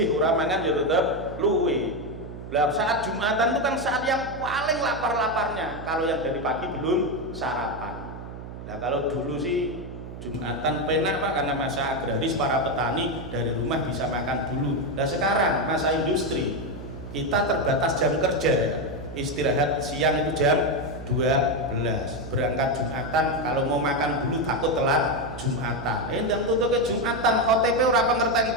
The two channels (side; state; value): right; noise; hum, 11 dB below the sound